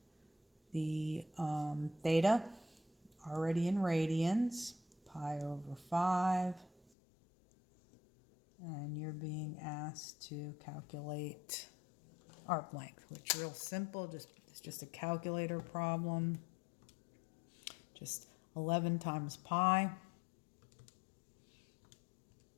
The theta, already in radians, pi over 5. And you're being asked to calculate arc length, which is real simple. It's just a calculator problem. Just 11 times pi.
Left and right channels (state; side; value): drops out; right; at 6.9 s